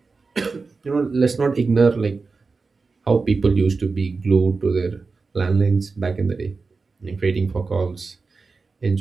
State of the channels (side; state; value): left; quieter; 4.3 dB